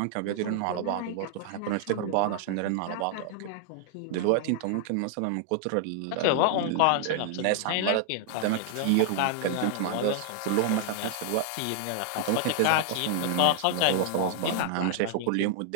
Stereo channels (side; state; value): both; different; correlation -0.01